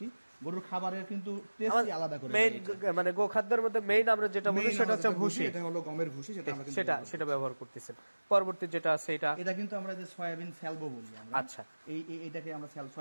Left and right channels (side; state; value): both; inverted; correlation -1.00